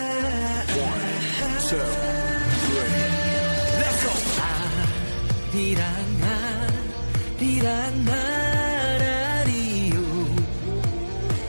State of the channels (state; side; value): inverted; both; correlation -1.00